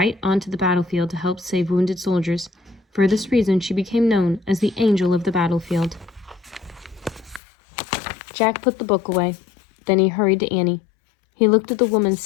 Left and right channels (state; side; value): drops out; right; at 7.4 s